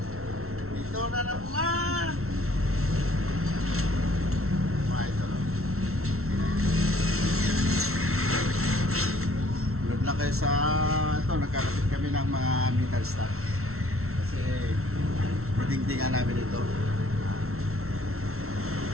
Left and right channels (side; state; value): left; late; 0.63 ms